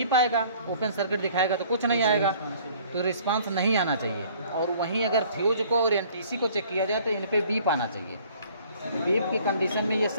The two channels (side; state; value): both; inverted; correlation -0.55